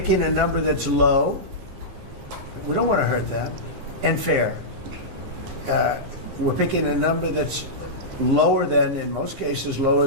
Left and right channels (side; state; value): left; late; 15 ms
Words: a number that's low. We don't want to hurt them. And fair. We're picking a number that's lower than, in most cases, lower